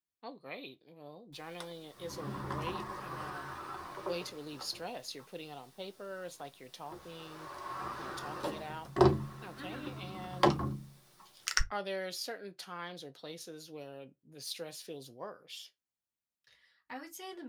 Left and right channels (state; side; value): identical; both; correlation 1.00